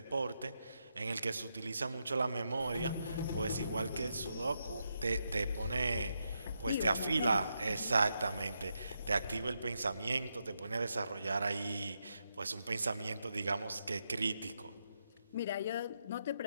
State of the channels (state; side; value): inverted; both; correlation -0.83